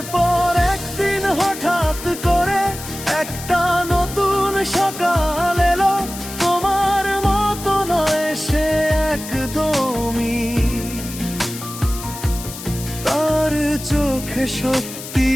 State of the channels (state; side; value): noise; left; hiss, 11 dB below the sound